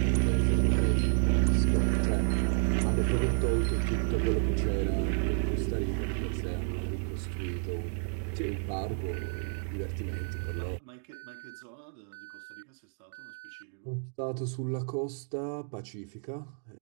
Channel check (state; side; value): silent; left; 57 dB below the other